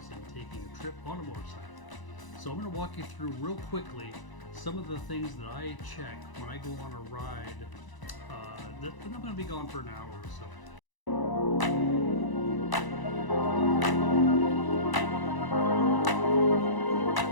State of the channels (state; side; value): late; right; 1.0 ms